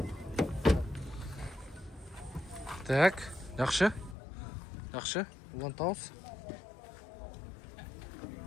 Так, жакшы. Жакшы, улантабыз.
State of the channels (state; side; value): drops out; right; at 4.2 s